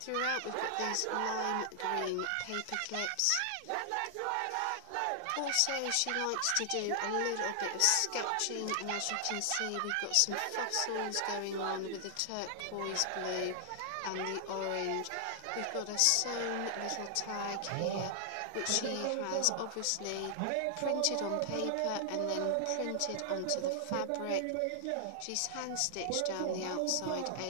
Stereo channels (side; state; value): both; different; correlation 0.00